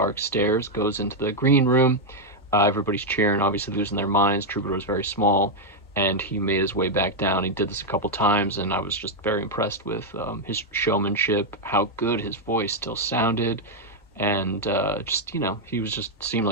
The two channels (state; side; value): normal; both; correlation 0.00